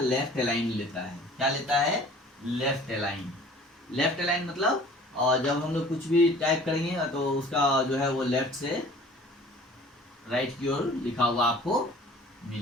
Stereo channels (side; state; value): both; normal; correlation 0.49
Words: अलाइन लेता है। क्या लेता है? Left align. लेफ्ट अलाइन मतलब जब हम लोग कुछ भी टाइप करेंगे तो उसका जो है वो लेफ्ट से राइट की ओर लिखा हुआ आपको